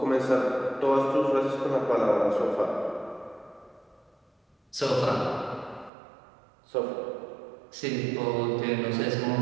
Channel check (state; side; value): drops out; left; at 5.9 s